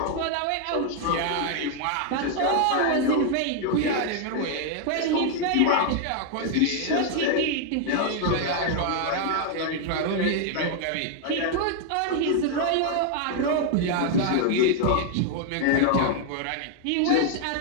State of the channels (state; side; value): different; both; correlation 0.00